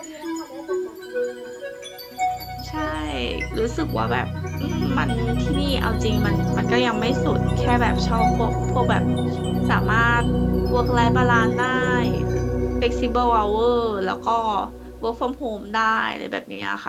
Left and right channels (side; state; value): both; identical; correlation 1.00